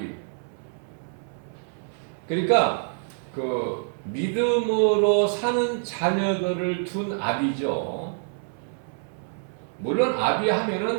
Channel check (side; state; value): left; silent; 61 dB below the other